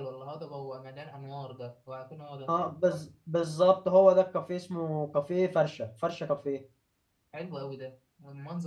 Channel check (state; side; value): identical; both; correlation 1.00